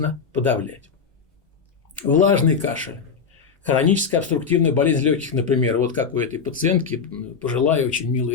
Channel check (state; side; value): quieter; right; 5.9 dB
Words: подавлять. Влажный кашель. Хроническая обструктивная болезнь легких, например, вот как у этой пациентки, пожилая, очень